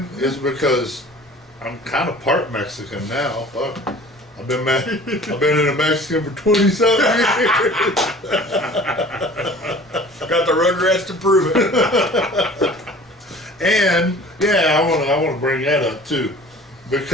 it's because I'm kind of part Mexican now. Fuck. I've been in a Mexican for 20-something years. Got the Rugrats to prove it. And yeah, I want to bring that up too,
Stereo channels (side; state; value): both; normal; correlation 0.45